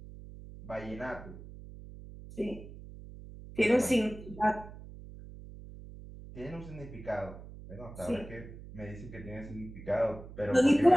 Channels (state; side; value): noise; right; hum, 15 dB below the sound